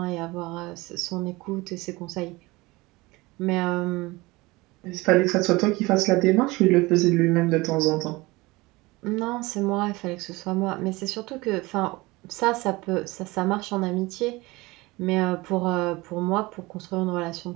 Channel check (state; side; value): quieter; left; 22.1 dB